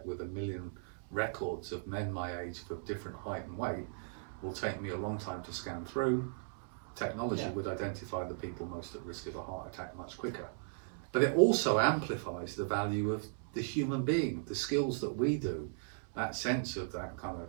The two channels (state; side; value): silent; left; 53 dB below the other